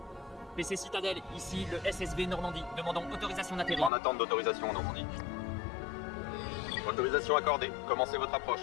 PC Citadelle, ici le SSV Normandie. Demandons autorisation d'atterrir. En attente d'autorisation en Normandie. Autorisation accordée. Commencez votre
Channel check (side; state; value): right; drops out; at 3.9 s